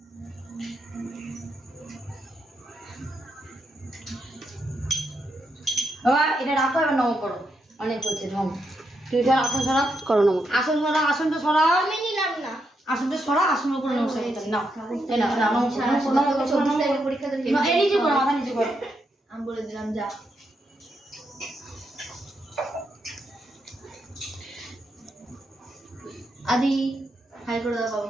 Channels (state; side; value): normal; both; correlation 0.81